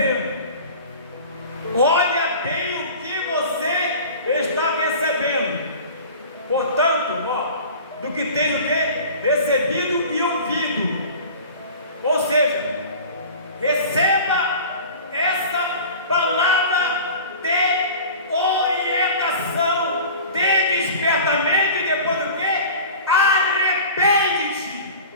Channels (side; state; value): both; inverted; correlation -0.39